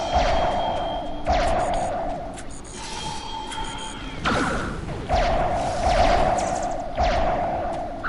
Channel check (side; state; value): both; identical; correlation 1.00